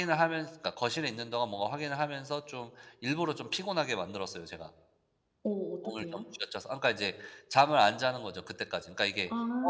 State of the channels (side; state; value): both; identical; correlation 1.00